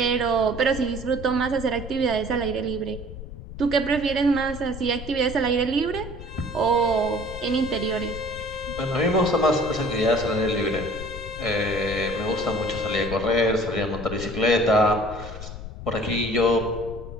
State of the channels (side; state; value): left; noise; rumble, 11 dB below the sound